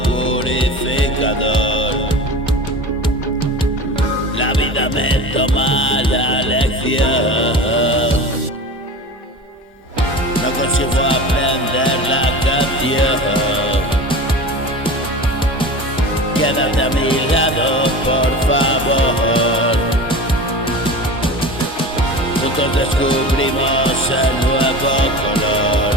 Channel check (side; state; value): both; normal; correlation 0.32